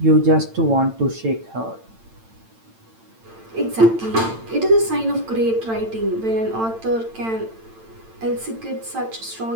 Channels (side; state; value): left; late; 8.9 ms